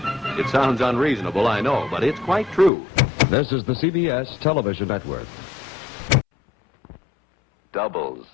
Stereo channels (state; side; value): drops out; right; at 2.7 s